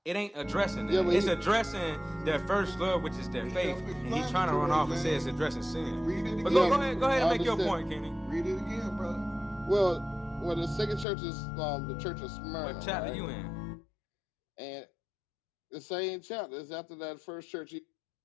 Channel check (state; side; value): drops out; right; at 11.1 s